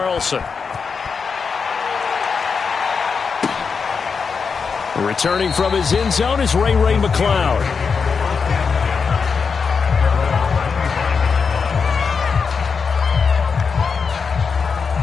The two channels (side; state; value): right; quieter; 5.5 dB